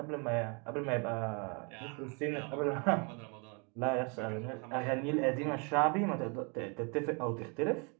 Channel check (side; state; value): left; quieter; 34.3 dB